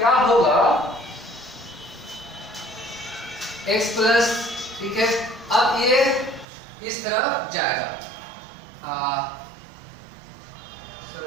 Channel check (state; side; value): drops out; left; at 6.5 s